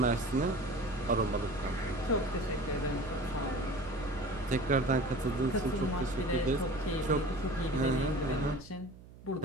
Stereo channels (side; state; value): right; noise; hum, 19 dB below the sound